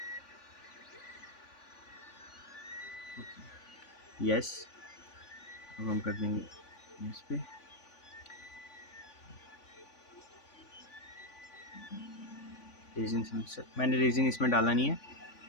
यस, अब हम कर देंगे इस पे। रेजिन सेंसर, मैंने रेजिन इसमें डाला नहीं है,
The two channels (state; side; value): late; right; 3.5 ms